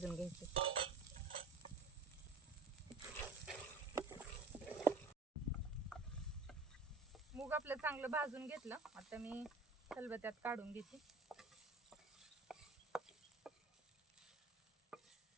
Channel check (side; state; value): left; quieter; 3.3 dB